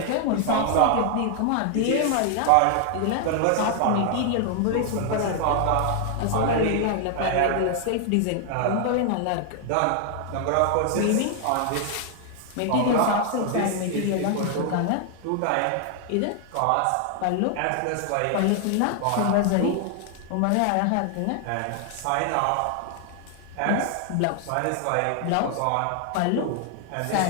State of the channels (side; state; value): both; different; correlation 0.00